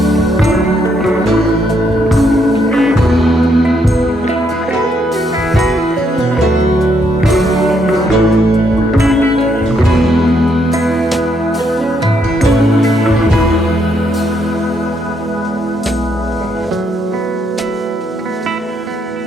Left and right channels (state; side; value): normal; both; correlation 0.74